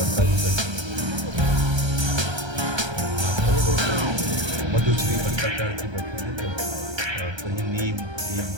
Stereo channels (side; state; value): left; late; 1.3 ms